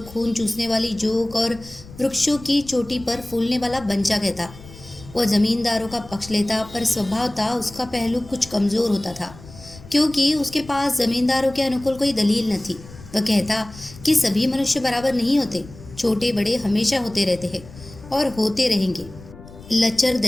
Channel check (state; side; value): noise; left; rumble, 18 dB below the sound